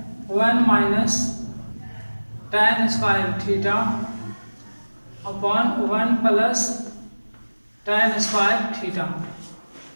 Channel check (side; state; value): both; inverted; correlation -1.00